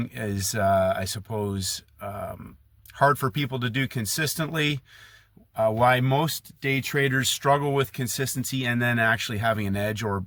is, I suppose, hard for people to do consistently, why most day traders struggle with consistency and then actually having an edge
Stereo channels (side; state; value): both; identical; correlation 1.00